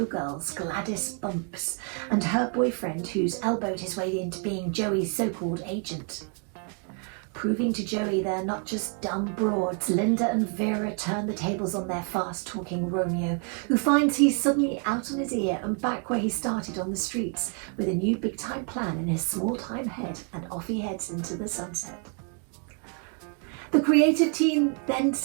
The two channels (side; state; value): left; quieter; 38.9 dB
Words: Gladys Bumps, and her boyfriend, who's elbowed his way into being Joey's so-called agent. Proving to Joey they're not just dumb broads, Linda and Vera turn the tables on their fast-talking Romeo, who finds he's suddenly out on his ear and back where he started on the streets, with a new big-time plan in his small-time head, and off he heads into the sunset. The creative team then